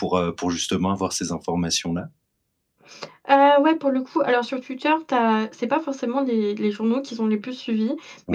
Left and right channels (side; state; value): both; identical; correlation 1.00